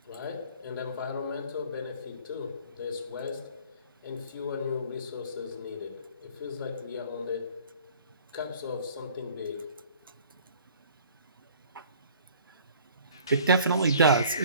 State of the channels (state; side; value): inverted; both; correlation -0.51